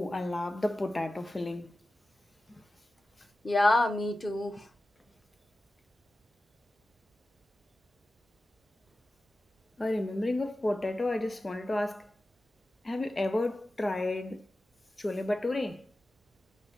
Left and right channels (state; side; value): normal; both; correlation 0.94